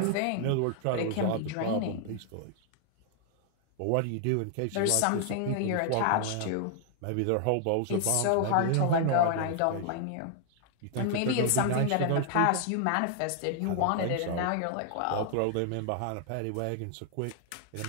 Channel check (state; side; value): different; both; correlation 0.00